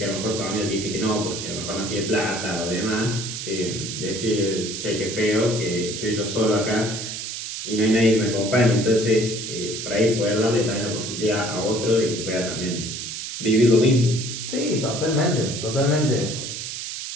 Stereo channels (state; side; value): noise; right; hiss, 6 dB below the sound